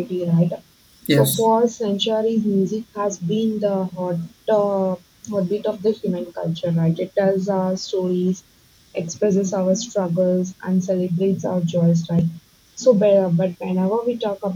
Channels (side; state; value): both; identical; correlation 1.00